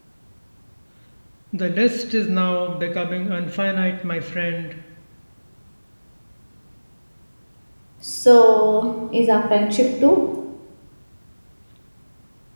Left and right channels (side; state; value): both; inverted; correlation -1.00